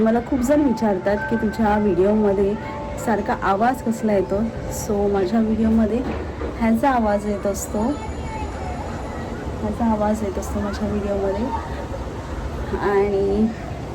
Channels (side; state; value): both; identical; correlation 1.00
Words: खूप जण विचारतात की तुझ्या व्हिडिओमध्ये सारखा आवाज कसला येतो. सो माझ्या व्हिडिओमध्ये ह्याचा आवाज येत असतो, माझ्या व्हिडिओमध्ये. आणि